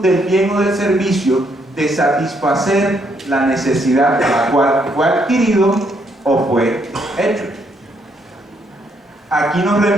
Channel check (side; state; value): both; normal; correlation 0.73